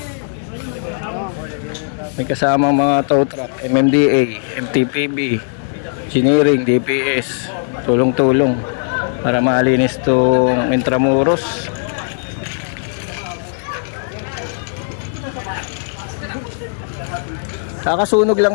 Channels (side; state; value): right; silent; digital silence